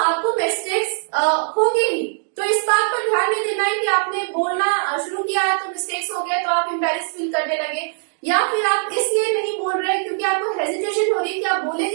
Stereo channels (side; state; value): left; silent; digital silence